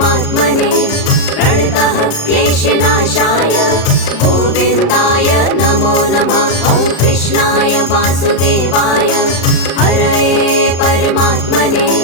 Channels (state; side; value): late; right; 36 ms